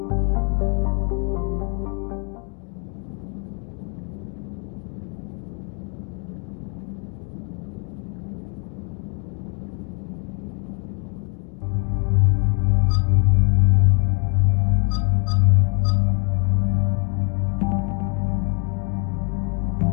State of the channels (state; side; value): quieter; right; 37.9 dB